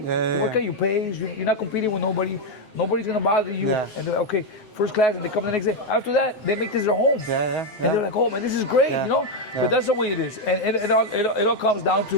work at your pace. You're not competing with nobody. Nobody's going to bother you. And they're like, okay, first class, and they come the next day. After that, they make this their home. And they're like, oh, man, this is great, But that's the way it is. And it all comes down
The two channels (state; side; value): late; right; 7.8 ms